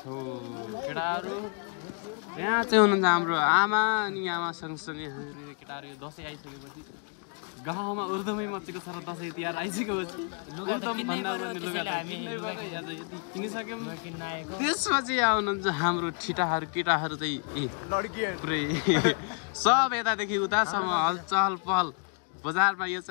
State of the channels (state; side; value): quieter; right; 36.3 dB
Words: छौँ केटाहरू यहाँ चाहिँ हुनुहुन्छ हाम्रो आमा अनि आमा सँगसँगै हामीहरू केटाहरू दसैँ आइसकेपछि गाउँमा उर्दुमै मचेको छ र दसैँ तिहार आइसकेपछि यति किनिसक्यौँ त्यसपछि आउनुहुन्छ हाम्रो ठिटाहरू केटाहरू चाहिँ पुरै सब यतादेखि उतासम्म हलचल पहल बजारमा यो